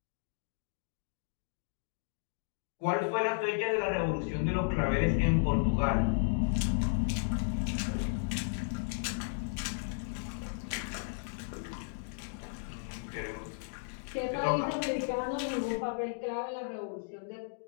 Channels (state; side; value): silent; right; digital silence